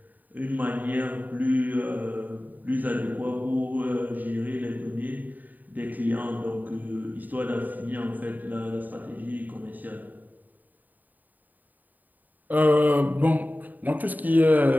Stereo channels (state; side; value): late; left; 0.085 ms